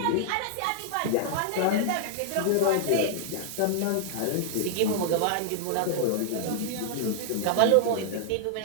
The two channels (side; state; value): both; different; correlation 0.00